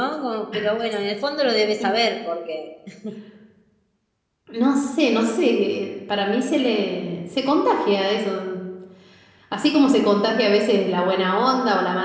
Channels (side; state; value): both; identical; correlation 1.00